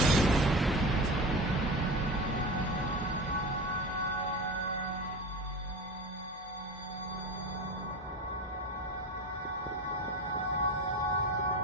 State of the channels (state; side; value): normal; both; correlation 0.30